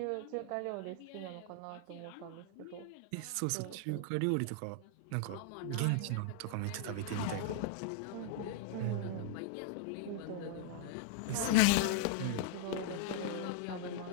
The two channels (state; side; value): different; both; correlation 0.00